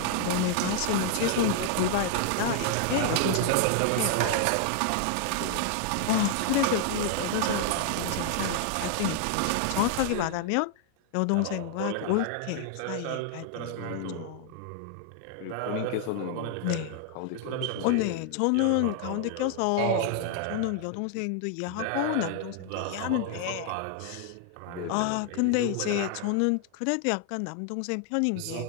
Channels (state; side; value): different; both; correlation 0.00